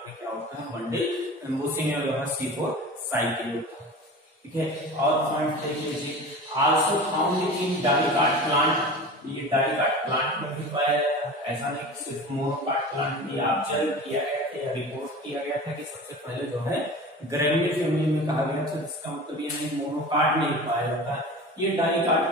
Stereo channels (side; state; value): both; normal; correlation 0.35